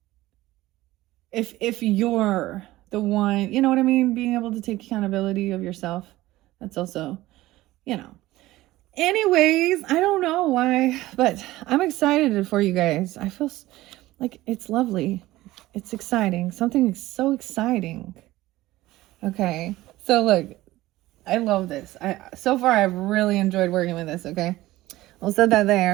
If you're the one, you know what I mean? Being able to take accountability of yourself. That's also, you know. Anyways, I don't know why, but I'm excited for you guys. I feel like it's lovely. It's exciting. Something so exciting. Okay. So look, I love this. So far I've really enjoyed working with this, okay? I'll set that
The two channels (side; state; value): left; quieter; 17.1 dB